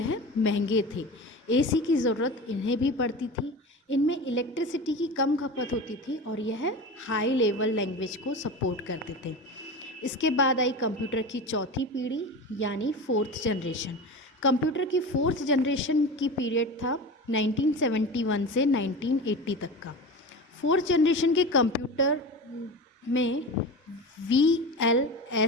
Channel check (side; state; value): both; normal; correlation 0.29